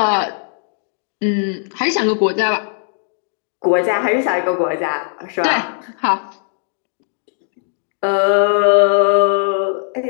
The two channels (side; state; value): right; silent; 62 dB below the other